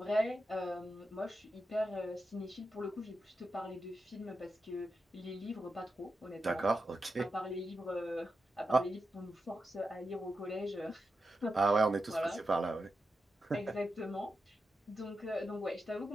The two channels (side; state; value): both; normal; correlation 0.89